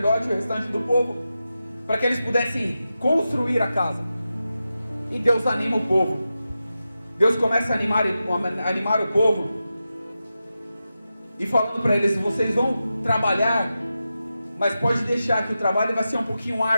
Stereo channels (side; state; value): both; inverted; correlation -0.91